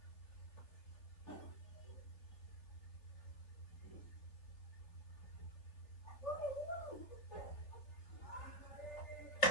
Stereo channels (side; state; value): right; late; 3.2 ms